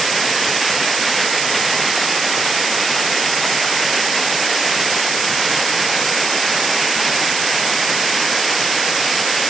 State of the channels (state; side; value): noise; right; hiss, 2 dB below the sound